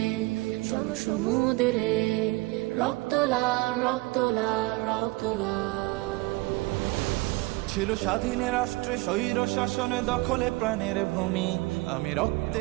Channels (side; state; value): left; quieter; 22.4 dB